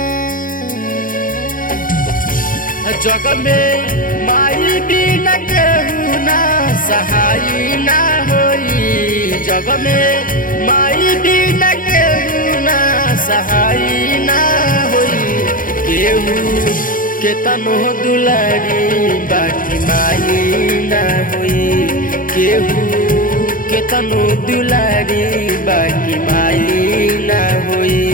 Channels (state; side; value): late; right; 0.40 ms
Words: जग में माई बिना केहू ना सहाय ना होई। जग में माई बिना केहू ना सहाय ना होई। केहू केतनो दुलारी बाकी माई ना होई। केहू केतनो दुलारी बाकी माई ना होई।